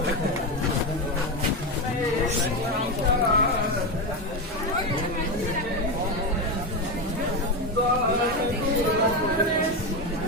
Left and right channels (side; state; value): both; normal; correlation 0.13